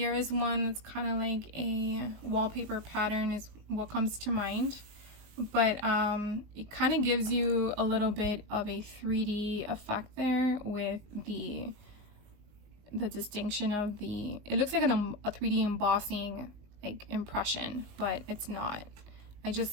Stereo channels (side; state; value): left; late; 19 ms